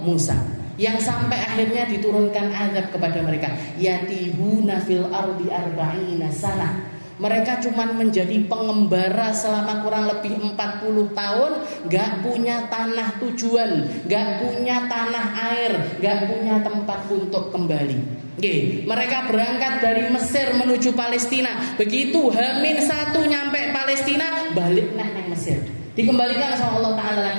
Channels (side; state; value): both; inverted; correlation -1.00